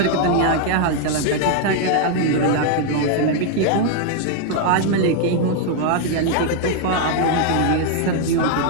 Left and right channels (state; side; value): different; both; correlation 0.00